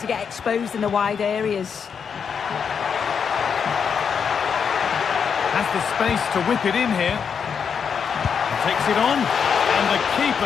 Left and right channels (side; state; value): right; quieter; 6.7 dB